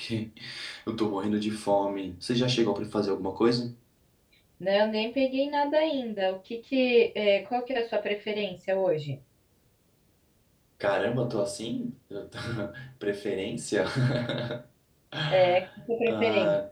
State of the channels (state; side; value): identical; both; correlation 1.00